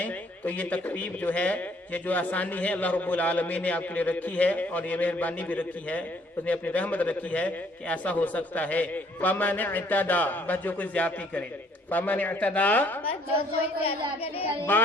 تو یہ تخفیف جو ہے, یہ جو آسانی ہے اللہ رب العالمین نے آپ کے لیے رکھی ہے, اور یہ مہربانی بھی رکھی ہے, اس نے اپنی رحمت رکھی ہے کہ ایسا ہو سکتا ہے. فَمَنِ اعْتَدَى بس جو کوئی زیادتی کرے, فَمَنِ اعْتَدَى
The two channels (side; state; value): both; normal; correlation 0.63